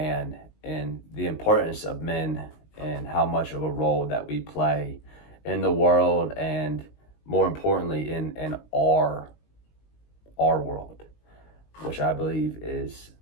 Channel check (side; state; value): right; late; 19 ms